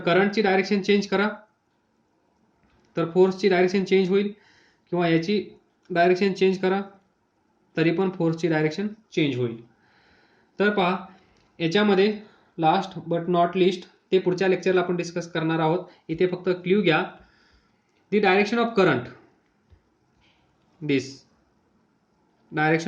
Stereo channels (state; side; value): identical; both; correlation 1.00